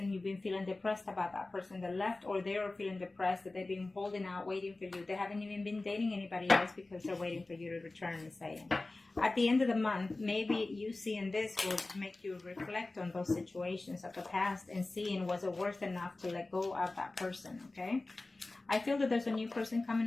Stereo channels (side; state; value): right; quieter; 3.1 dB